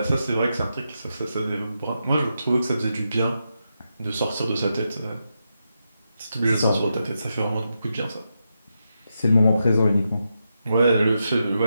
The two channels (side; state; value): both; inverted; correlation -0.86